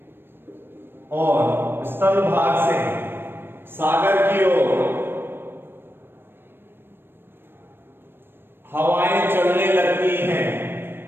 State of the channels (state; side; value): late; left; 0.10 ms